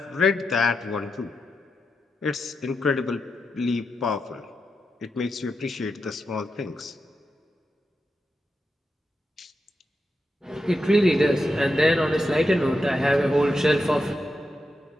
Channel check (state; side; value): normal; both; correlation 0.87